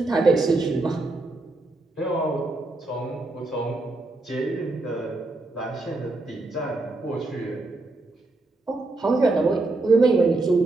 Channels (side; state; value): left; quieter; 3.2 dB